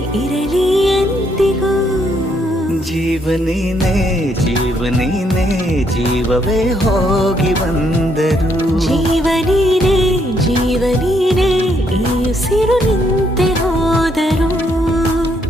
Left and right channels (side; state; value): both; normal; correlation 0.73